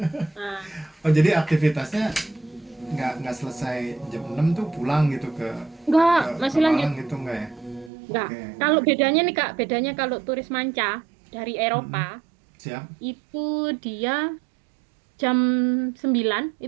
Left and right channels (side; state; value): left; drops out; at 7.9 s